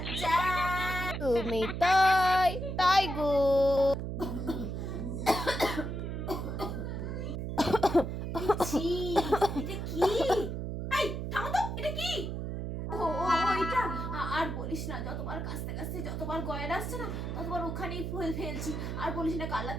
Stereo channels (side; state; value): right; noise; hum, 4 dB below the sound